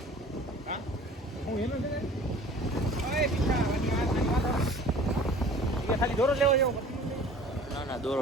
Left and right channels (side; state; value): both; normal; correlation 0.47